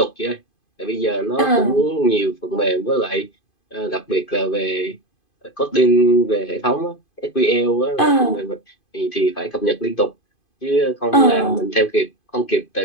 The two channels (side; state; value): right; late; 2.5 ms